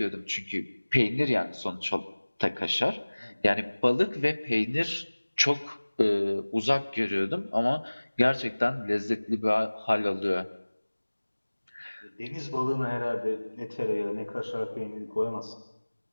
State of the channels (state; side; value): inverted; both; correlation -1.00